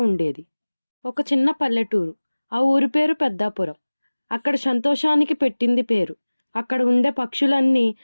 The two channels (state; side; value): inverted; both; correlation -1.00